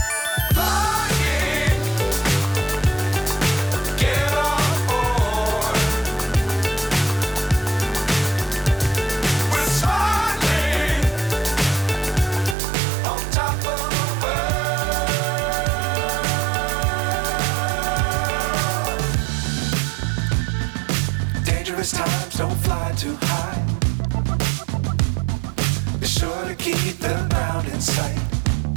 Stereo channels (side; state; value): left; drops out; at 12.6 s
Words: Times don't fly too high. Be sure to keep the ground in sight.